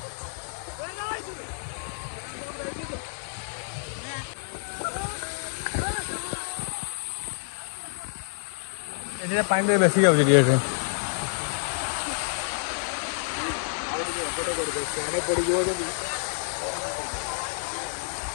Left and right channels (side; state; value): right; silent; digital silence